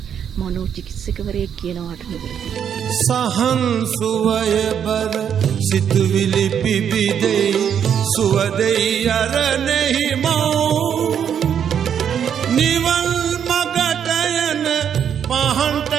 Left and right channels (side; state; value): left; quieter; 8.4 dB